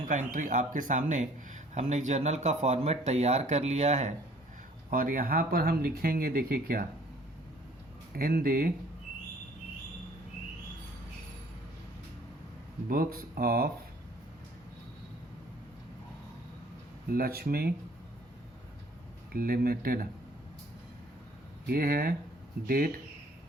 का एंट्री। आपके सामने हमने एक जर्नल का फॉर्मेट तैयार कर लिया है और यहाँ पर हम लिखेंगे, देखिए क्या, in the books of Lakshmi limited. ये है डेट,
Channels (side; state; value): both; normal; correlation 0.56